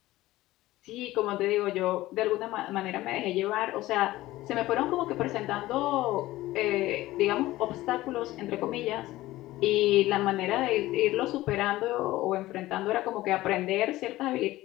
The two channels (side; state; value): right; quieter; 17.0 dB